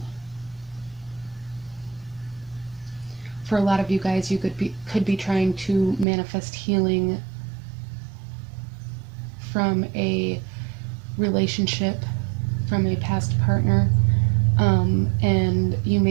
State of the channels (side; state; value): left; drops out; at 6.1 s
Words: For a lot of you guys, you could be trying to manifest healing from a relationship, from a past partner, and you